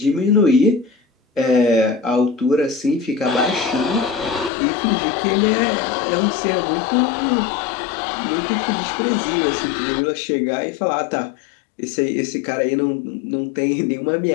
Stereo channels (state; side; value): drops out; right; at 4.5 s